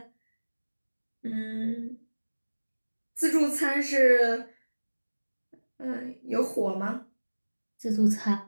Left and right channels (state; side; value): inverted; both; correlation -1.00